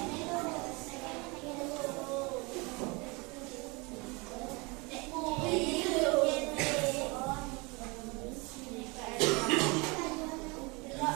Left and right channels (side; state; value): left; quieter; 27.5 dB